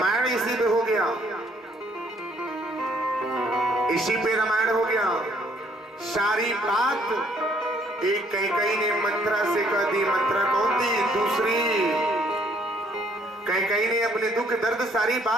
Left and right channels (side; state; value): both; normal; correlation 0.65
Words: इसी पे हो गया, इसी पे रामायण हो गया, सारी बात एक कैकेयी ने मंत्रा से कह दी। मंत्रा कौन थी? दूसरी। कैकेयी ने अपने दुख दर्द सारी